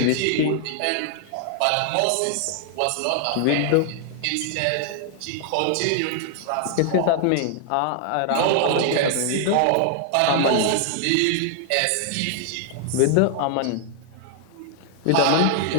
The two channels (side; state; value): both; different; correlation 0.00